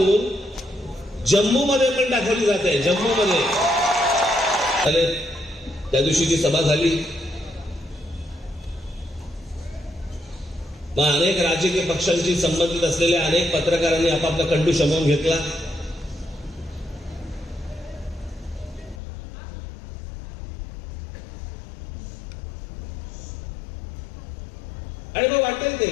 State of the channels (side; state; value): right; drops out; at 19.0 s